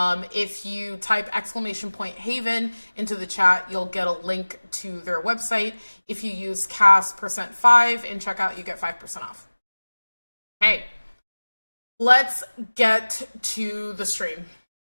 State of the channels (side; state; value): both; inverted; correlation -1.00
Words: you type !Haven into the chat, you'll get a link to their website. If you use CAS%5 in checkout, you get 5% off. Hey, let's get to the stream.